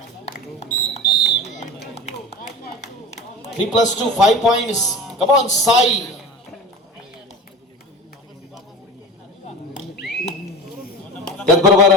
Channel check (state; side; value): normal; both; correlation 0.32